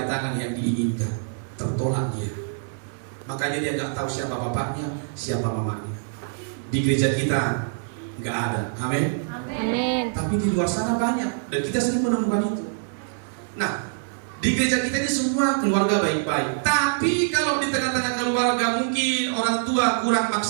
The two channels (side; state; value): left; silent; 62 dB below the other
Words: yang diinginkan, tertolak dia. Makanya dia nggak tahu siapa bapaknya, siapa mamanya. Di gereja kita nggak ada, amin. Amin. Tapi di luar sana banyak dan kita sering menemukan itu. Nah, di gereja kita ini semua keluarga baik-baik. Tapi kalau di tengah-tengah keluarga mungkin orang tua kurang